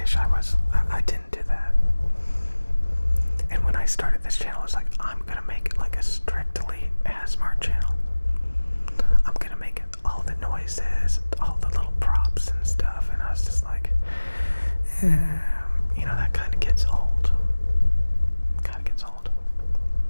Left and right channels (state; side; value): inverted; both; correlation -1.00